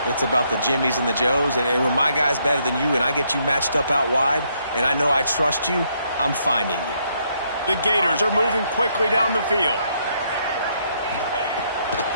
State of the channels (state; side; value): inverted; both; correlation -0.73